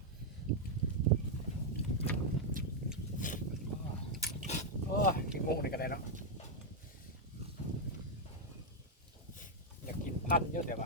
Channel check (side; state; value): both; normal; correlation -0.01